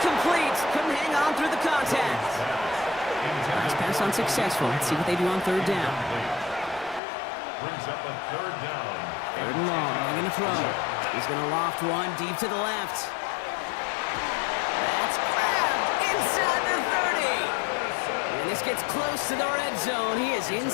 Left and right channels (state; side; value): drops out; right; at 7.0 s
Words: Couldn't hang on through the contact. Nice pass unsuccessful. Let's see what they do on 3rd down. Brings up a 3rd down. 3rd and long. They're going to throw. He's going to loft one deep to the left. That's grabbed inside the 30. And this gets close to the red zone. He is